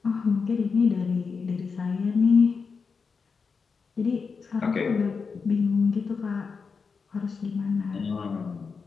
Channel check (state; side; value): quieter; right; 5.2 dB